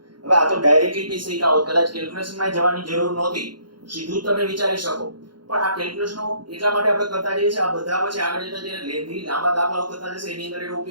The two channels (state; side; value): late; left; 0.71 ms